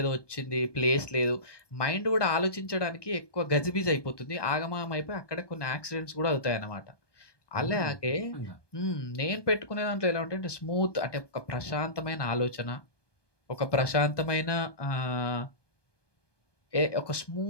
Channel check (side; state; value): right; late; 1.2 ms